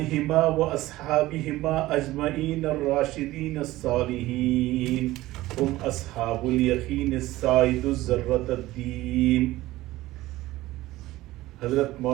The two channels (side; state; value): left; quieter; 17.2 dB